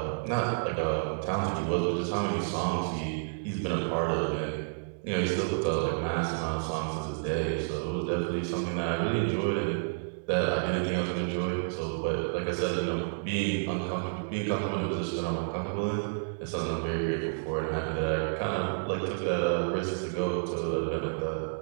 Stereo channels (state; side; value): silent; left; digital silence